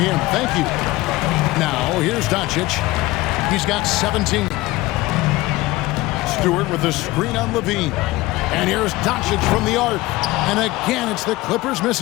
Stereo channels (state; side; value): quieter; right; 19.4 dB